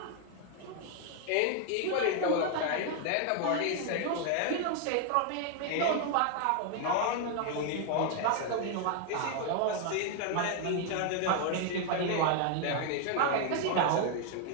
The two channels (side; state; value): both; different; correlation 0.00